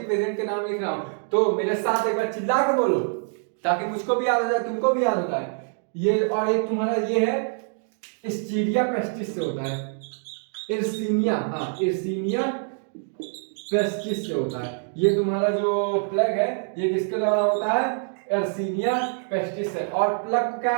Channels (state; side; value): silent; left; 57 dB below the other